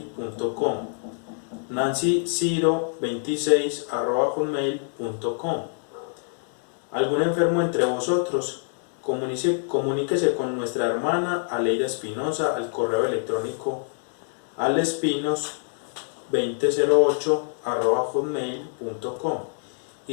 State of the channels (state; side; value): silent; right; 61 dB below the other